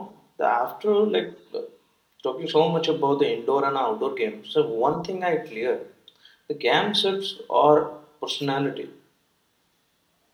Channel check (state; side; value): identical; both; correlation 1.00